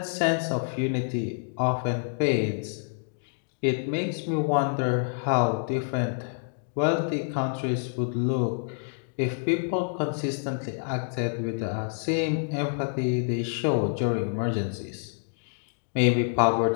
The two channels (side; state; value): right; silent; digital silence